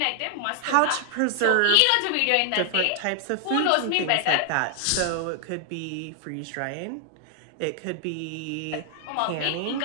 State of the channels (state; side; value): different; both; correlation 0.00